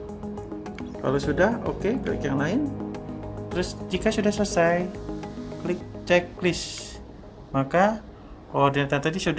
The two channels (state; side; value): identical; both; correlation 1.00